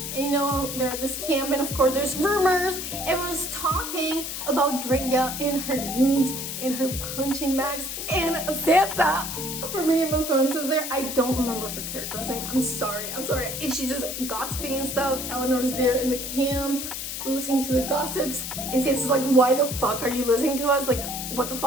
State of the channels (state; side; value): noise; left; hiss, 5 dB below the sound